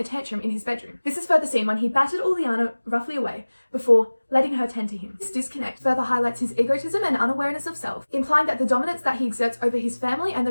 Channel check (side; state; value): both; inverted; correlation -1.00